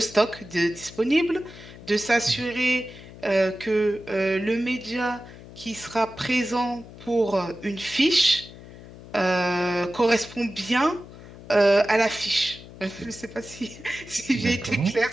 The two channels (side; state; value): left; noise; hum, 17 dB below the sound